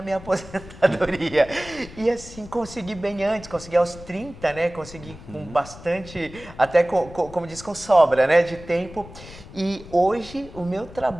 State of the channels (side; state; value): left; noise; rumble, 17 dB below the sound